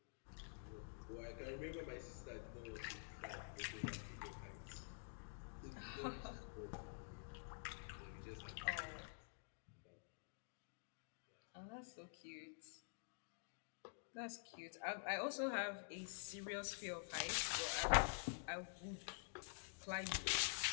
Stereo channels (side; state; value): right; silent; digital silence